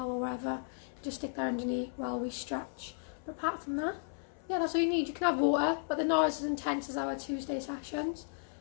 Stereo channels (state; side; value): silent; right; 55 dB below the other